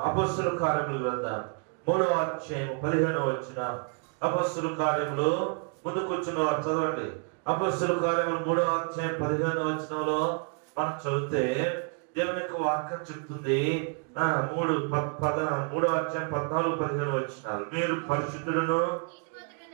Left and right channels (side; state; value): left; quieter; 38.7 dB